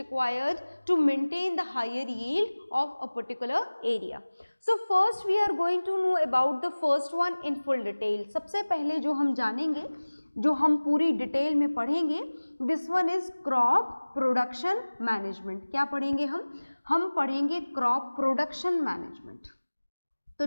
to maintain the higher yield of a particular area. So first we are going to know about the first one in full detail. सबसे पहले जो हम जानेंगे, जो हम पूरी detail में पढ़ेंगे, this one is crop production management. क्या पढ़ेंगे हम पढ़ेंगे क्रॉप प्रोडक्शन मैनेजमेंट। तो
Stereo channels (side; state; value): both; inverted; correlation -1.00